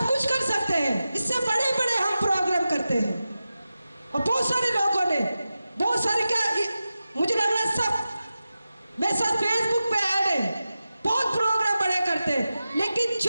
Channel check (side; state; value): both; inverted; correlation -0.93